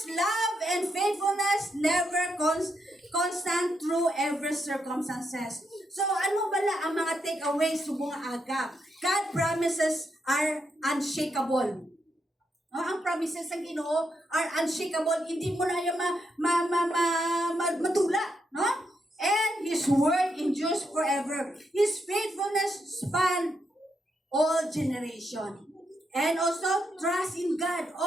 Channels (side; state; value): both; normal; correlation 0.81